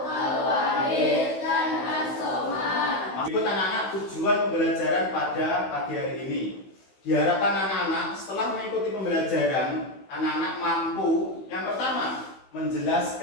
Ikut anak-anak tujuan pembelajaran pada pagi hari ini. Diharapkan anak-anak setelah mengikuti pembelajaran, anak-anak mampu yang pertama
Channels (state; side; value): late; right; 15 ms